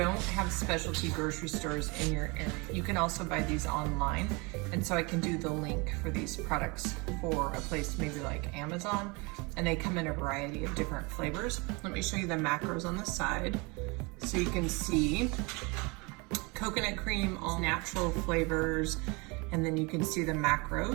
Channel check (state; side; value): quieter; left; 27.9 dB